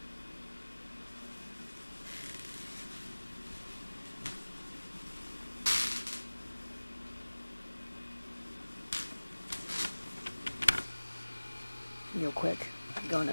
Real quick, I'm going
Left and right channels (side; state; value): both; inverted; correlation -1.00